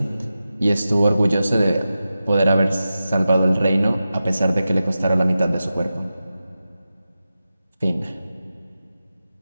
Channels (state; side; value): inverted; both; correlation -0.93